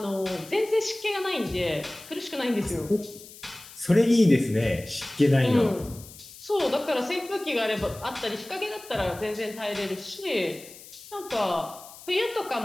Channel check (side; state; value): left; noise; hiss, 18 dB below the sound